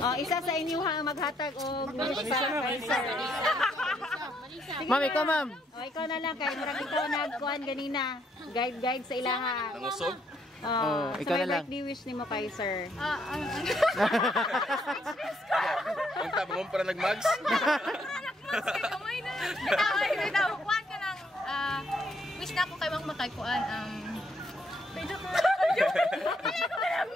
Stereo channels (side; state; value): both; normal; correlation 0.72